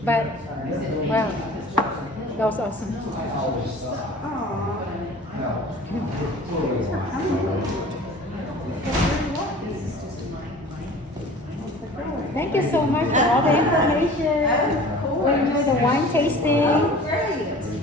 but wow, that was awesome. Thank you so much for all the information. We enjoy the wine tasting.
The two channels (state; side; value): normal; both; correlation 0.43